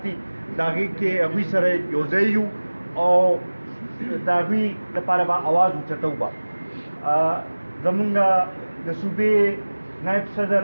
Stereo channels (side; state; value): both; inverted; correlation -1.00